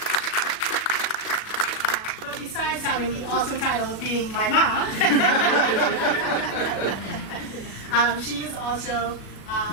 But besides having the awesome title of being my mom, she is also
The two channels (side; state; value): right; late; 37 ms